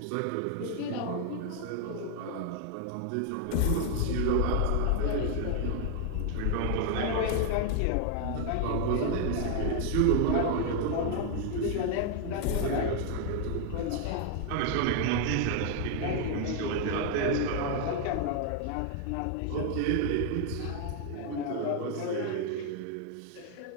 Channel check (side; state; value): both; different; correlation 0.00